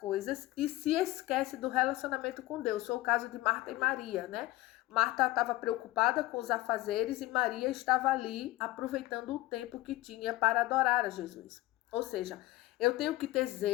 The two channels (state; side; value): quieter; right; 18.0 dB